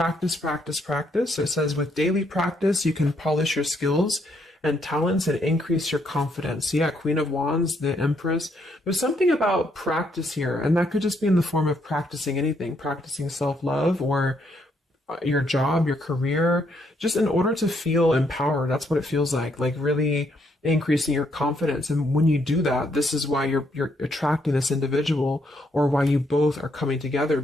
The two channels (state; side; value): normal; both; correlation 0.73